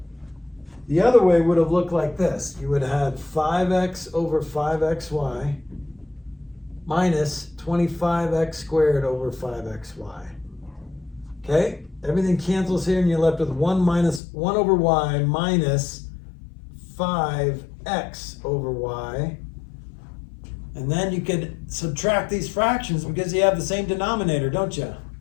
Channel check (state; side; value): drops out; right; at 14.2 s